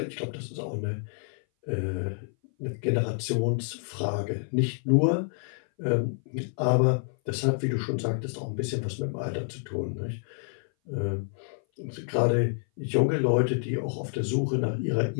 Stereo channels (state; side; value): silent; right; 57 dB below the other